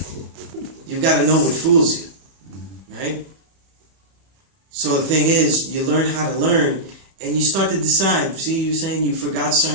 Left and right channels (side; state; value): left; late; 31 ms